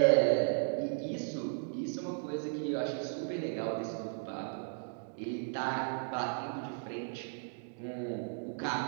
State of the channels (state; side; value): silent; left; digital silence